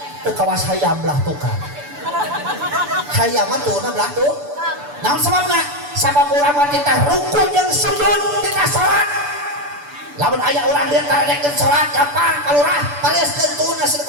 Teu kawas hayam belah tukang. Hayam mah tuurna belah tuh. Naon sababna? Sabab urang mah teh ruku jeung sujud dina salat. Lamun aya urang dia tarekeun salat gampang kalurah paliaskeun tuurna seueur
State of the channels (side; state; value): left; late; 6.9 ms